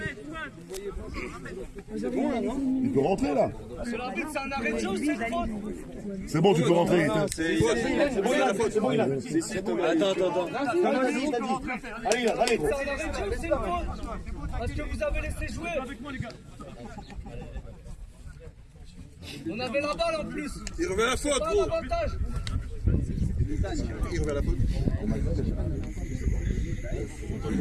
Il peut rentrer, là. C'est l'arbitre, c'est un arrêt de jeu, c'est une faute. C'est bon, tu peux rentrer. C'est bon, il a faute, c'est bon, il a. Attends. Allez. C'est un arrêt de jeu, c'est une faute. Parce que vous avez laissé jouer. On avait la balle en plus. Il revient à la faute, Pas l'avantage. Il revient à la faute.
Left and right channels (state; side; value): identical; both; correlation 1.00